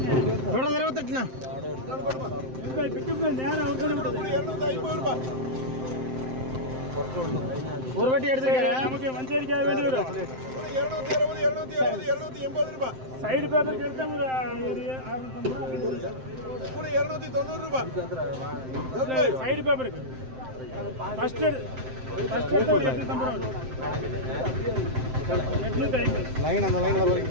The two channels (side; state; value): left; late; 7.7 ms